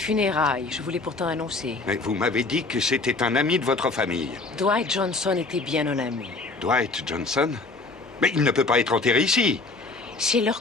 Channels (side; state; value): right; quieter; 3.6 dB